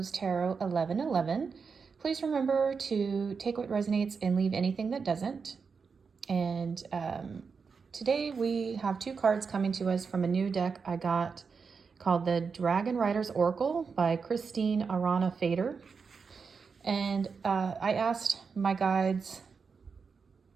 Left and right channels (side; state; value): left; quieter; 5.4 dB